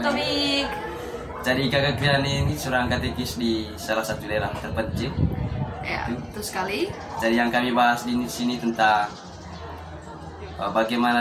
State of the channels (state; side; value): identical; both; correlation 1.00